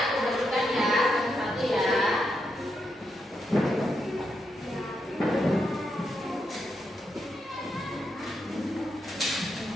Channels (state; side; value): normal; both; correlation 0.82